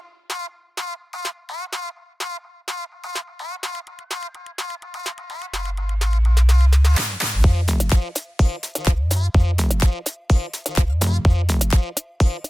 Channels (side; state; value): both; normal; correlation 0.96